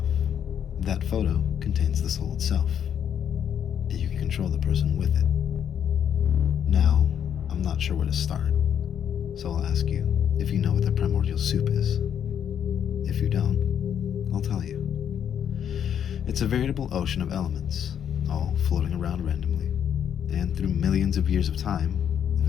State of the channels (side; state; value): right; quieter; 8.8 dB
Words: that photo contains the soul itself, and you can control the person with it. Now, I'm not sure where to start, so I'll ask you if you know what the primordial soup is. If you don't, I'll tell you. It's a veritable ocean of elements, all floating around randomly, and through millions of years of time,